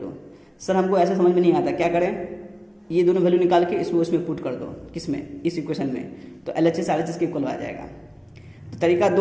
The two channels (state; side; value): identical; both; correlation 1.00